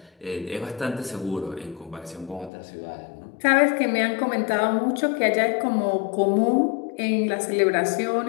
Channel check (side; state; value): right; drops out; at 2.5 s